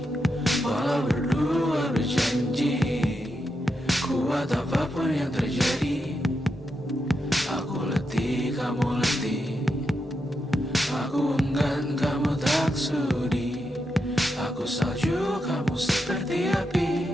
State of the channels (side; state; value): both; normal; correlation 0.85